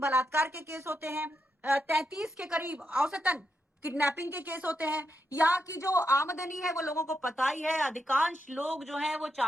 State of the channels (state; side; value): normal; both; correlation 0.84